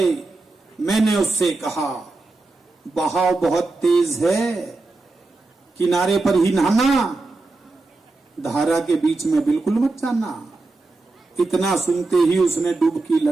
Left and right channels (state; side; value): quieter; left; 3.4 dB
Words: मैंने उससे कहा, बहाव बहुत तेज है, किनारे पर ही नहाना, धारा के बीच में बिल्कुल मत जाना। इतना सुनते ही उसने डुबकी